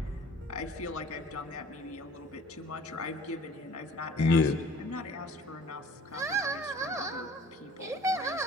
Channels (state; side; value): normal; both; correlation 0.49